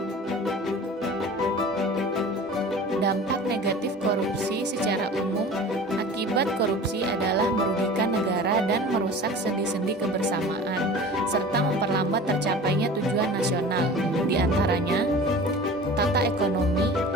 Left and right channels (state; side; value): normal; both; correlation 0.39